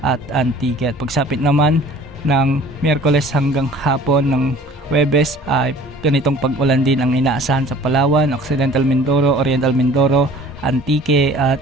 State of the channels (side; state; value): both; normal; correlation 0.49